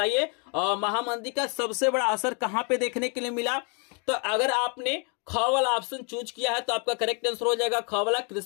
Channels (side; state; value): right; quieter; 37.6 dB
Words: महामंदी का सबसे बड़ा असर कहां पे देखने के लिए मिला? तो अगर आपने ख वाला ऑप्शन चूज किया है तो आपका करेक्ट आंसर हो जाएगा ख वाला,